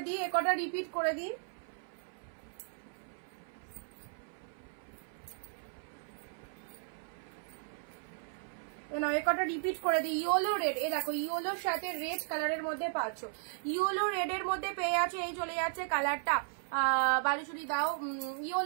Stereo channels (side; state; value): left; silent; 54 dB below the other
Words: দিই, একটা রিপিট করে দিই। একটা রিপিট করে দিই। ইয়েলো রেড, এ দেখো ইয়েলোর সাথে রেড কালারের মধ্যে পাচ্ছ, ইয়েলো রেড এর মধ্যে পেয়ে যাচ্ছে। এই চলে যাচ্ছে কালারটা, বালুচুরি দাও,